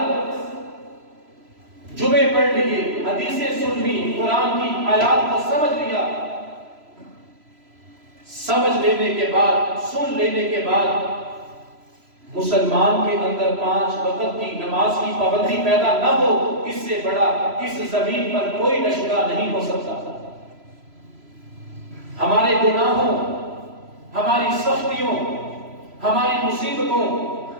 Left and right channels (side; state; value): left; late; 3.0 ms